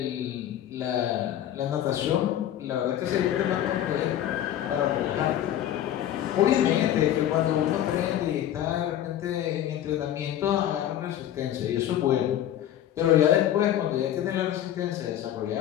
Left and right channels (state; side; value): quieter; right; 11.5 dB